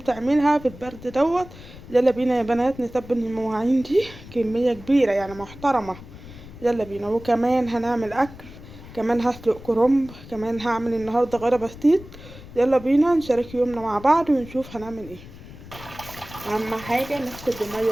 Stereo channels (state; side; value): noise; left; rumble, 17 dB below the sound